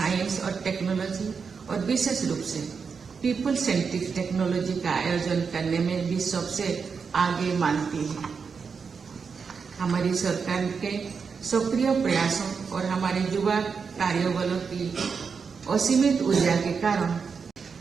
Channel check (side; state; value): left; quieter; 5.6 dB